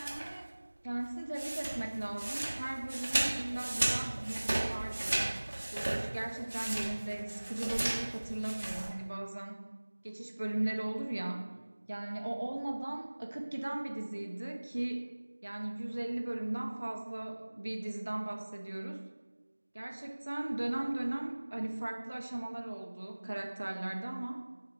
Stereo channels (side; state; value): both; inverted; correlation -1.00